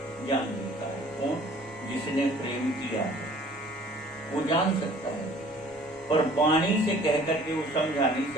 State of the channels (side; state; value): both; normal; correlation 0.52